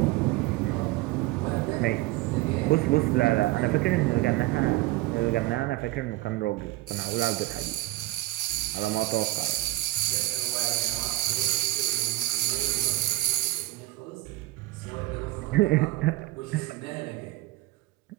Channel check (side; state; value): left; quieter; 18.2 dB